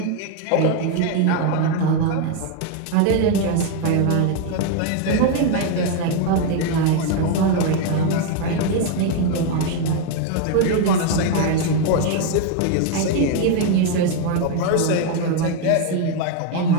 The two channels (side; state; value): both; different; correlation 0.01